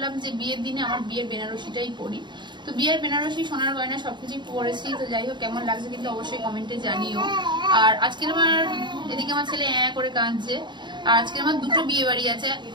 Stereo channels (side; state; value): left; late; 0.22 ms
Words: যে বিয়ের দিনে আমার বিয়ের বেনারসিটাই পরি। তো বিয়ের বেনারসি, সোনার গয়না সবকিছুই পরেছি। তো যাই হোক, কেমন লাগছে কিন্তু অবশ্যই কমেন্টে জানিও। আর আজকের আমার এদিকে আমার ছেলে করে কাঁদছে। আর আজকে আমার দুটো বিয়ে বাড়ি আছে।